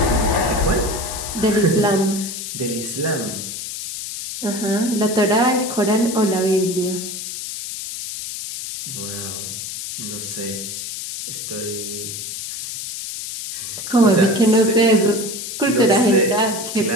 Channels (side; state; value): left; noise; hiss, 7 dB below the sound